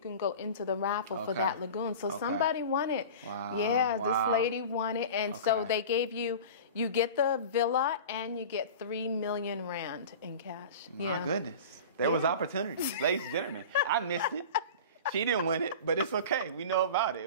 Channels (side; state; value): both; inverted; correlation -0.35